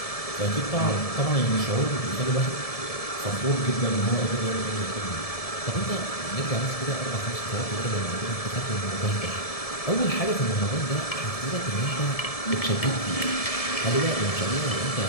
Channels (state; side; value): late; right; 1.7 ms